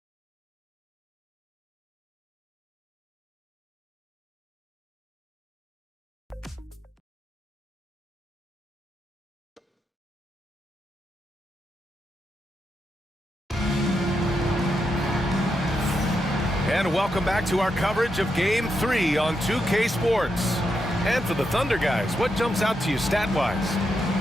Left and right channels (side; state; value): both; normal; correlation 0.84